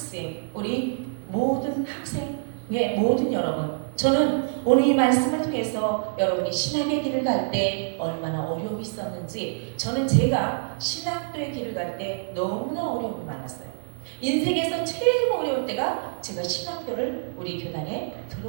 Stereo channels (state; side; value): silent; left; digital silence